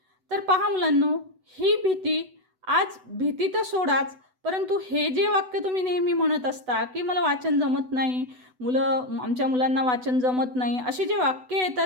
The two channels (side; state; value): left; late; 8.0 ms